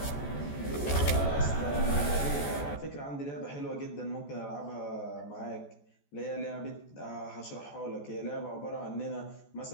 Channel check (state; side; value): late; right; 14 ms